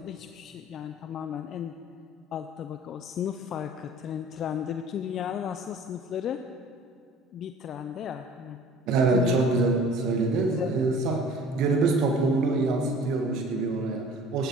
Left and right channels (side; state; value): both; normal; correlation 0.47